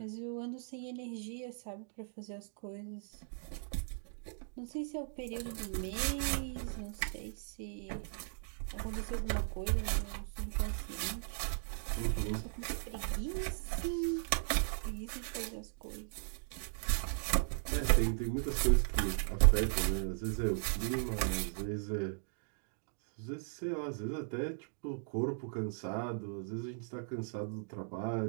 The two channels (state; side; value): silent; left; digital silence